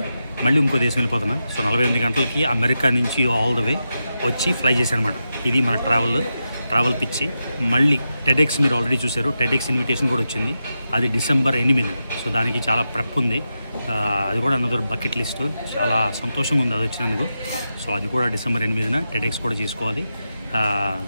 మళ్ళీ ఇంకో దేశం వెళ్ళిపోతున్నా. సో 48 గంటలకి అమెరికా నుంచి ఆల్ ద వే వచ్చి ఫ్లై చేశాను అనమాట. ఇది మన ట్రావెల్ పిచ్చి. మళ్ళీ టెడెక్స్ మీరు ఆల్రెడీ చూశారు, టెడెక్స్ ఇన్విటేషన్ కూడా వచ్చింది. అది December 8. సో దానికి చాలా ప్రెప్ ఉంది. అది కూడా అనదర్ బకెట్ లిస్ట్. చాలా సంతోషంగా ఉంది అది వచ్చినందుకు. సో అది కూడా December 8 టెడెక్స్ కూడా చేసుకోవాలి.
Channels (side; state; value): both; inverted; correlation -0.89